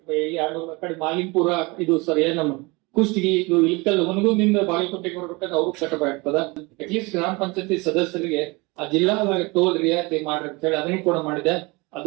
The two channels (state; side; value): quieter; left; 25.5 dB